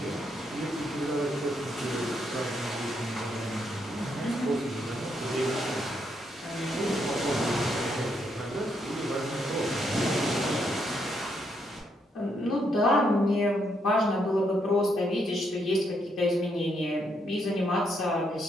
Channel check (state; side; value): normal; both; correlation 0.76